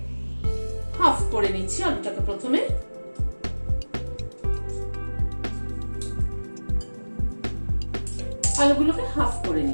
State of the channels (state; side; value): inverted; both; correlation -1.00